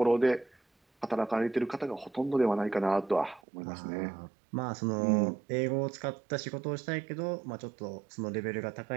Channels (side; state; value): left; drops out; at 3.4 s